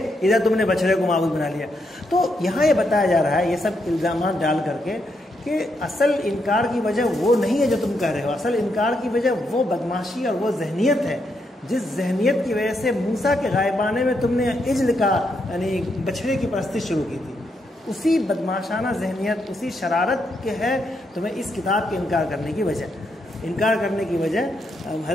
ادھر تم نے بچڑے کو معبود بنا لیا. تو یہاں یہ بتایا جا رہا ہے، یہ سب الزامات ڈال کر کے، کہ اصل انکار کی وجہ وہ نہیں ہے جو تم کہہ رہے ہو. اصل انکار کی وجہ وہ بدماشی اور وہ ذہنیت ہے جس ذہنیت کی وجہ سے موسیٰ کے غائبانے میں تم نے عجل کا یعنی بچھڑے کی پرستش شروع کی تھی. اسی بدماشانہ ذہنیت، اسی شرارت کے ہے تمہیں اس کتاب کے انکار کرنے کی وجہ. انکار کرنے کی وجہ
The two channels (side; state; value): both; normal; correlation 0.80